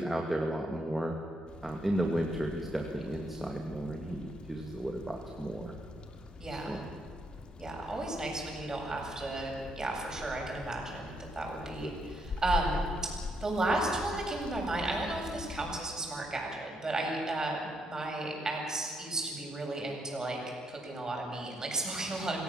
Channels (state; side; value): normal; both; correlation 0.76